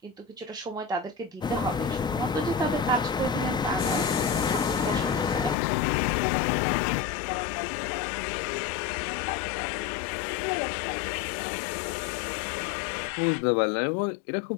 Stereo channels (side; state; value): right; drops out; at 5.6 s